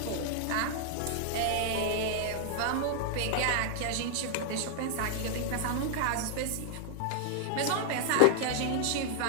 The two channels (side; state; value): both; different; correlation 0.00